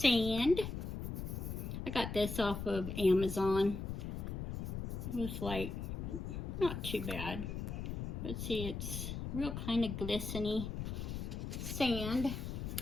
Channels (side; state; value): left; noise; rumble, 4 dB below the sound